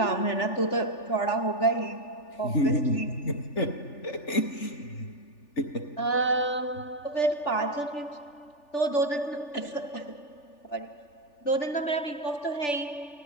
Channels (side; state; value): right; late; 3.4 ms